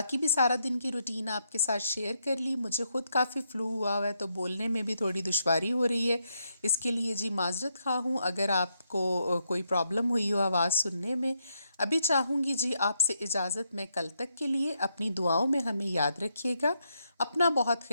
بھی سارا دن کی روٹین آپ کے ساتھ شیئر کر لی۔ مجھے خود کافی فلو ہوا ہے تو بولنے میں بھی تھوڑی دشواری ہو رہی ہے، اس کے لیے جی معذرت خواہ ہوں اگر آپ کو کوئی پرابلم ہوئی ہو آواز سننے میں۔ ابھی چاہوں گی جی آپ سے اجازت، میں کل تک کے لیے اپنی دعاؤں میں ہمیں یاد رکھیے گا، اپنا بہت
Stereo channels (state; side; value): inverted; both; correlation -0.79